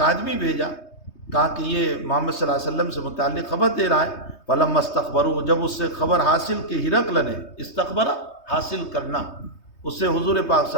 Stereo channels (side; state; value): right; late; 3.2 ms